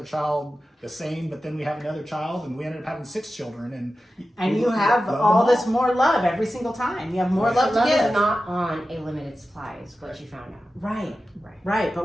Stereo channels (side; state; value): both; normal; correlation 0.93